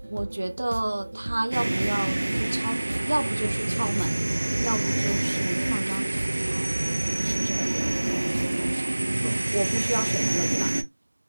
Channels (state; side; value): inverted; both; correlation -1.00